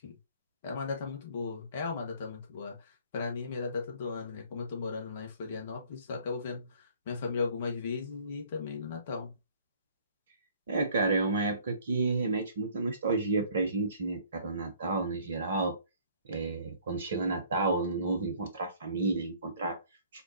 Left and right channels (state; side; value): inverted; both; correlation -0.56